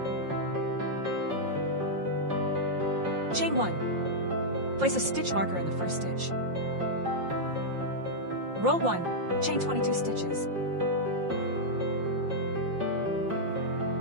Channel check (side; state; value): left; late; 5.7 ms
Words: Chain 1. Place a stitch marker in the first stitch. Roll 1, chain 22 stitches.